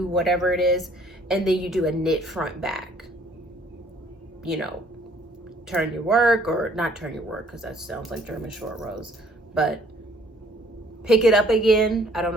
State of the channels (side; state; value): both; normal; correlation 0.60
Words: whatever it is, and then you do a knit front back. You know, turn your work, or not turn your work, because that sounds like German short rows, but pick it up again. I don't